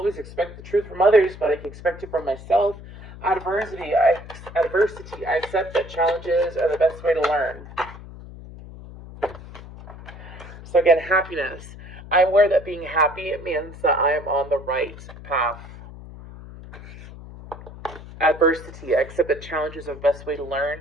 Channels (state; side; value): noise; left; hum, 15 dB below the sound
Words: expect the truth from others, but I can expect it from myself. Adversity. I accept that challenges are the best way to learn. So again, happiness. I'm aware that being happy means that I am on the right path. Adversity. I accept that challenges are the best way to learn.